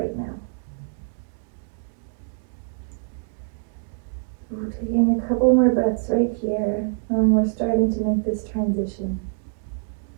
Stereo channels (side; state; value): left; silent; digital silence